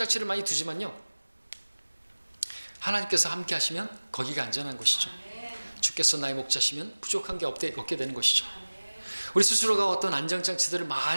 많이 두지만요, 하나님께서 함께 하시면 거기가 안전한 것이죠. 주께서 나의 목자시면 부족한 게 없게 되는 것이죠. 우리 스스로가 어떤 안전장치들을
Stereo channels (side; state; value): both; inverted; correlation -1.00